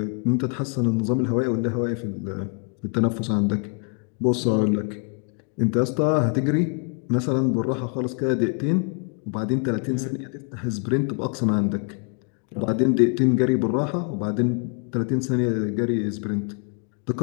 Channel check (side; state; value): right; quieter; 38.8 dB